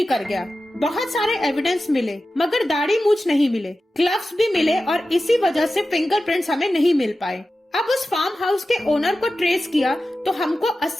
कर गया। बहुत सारे एविडेंस मिले, मगर दाढ़ी मूछ नहीं मिले। ग्लव्स भी मिले और इसी वजह से फिंगरप्रिंट्स हमें नहीं मिल पाए। अब उस फार्म हाउस के ओनर को ट्रेस किया तो हमको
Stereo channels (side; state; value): both; normal; correlation 0.93